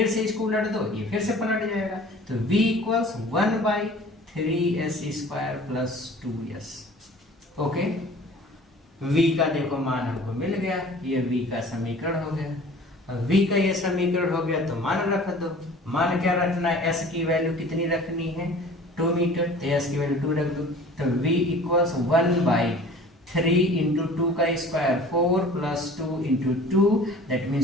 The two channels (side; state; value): both; normal; correlation 0.46